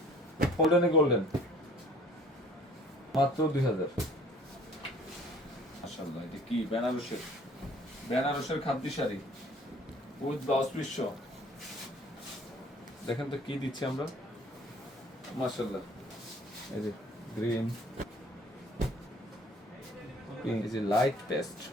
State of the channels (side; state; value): both; normal; correlation 0.53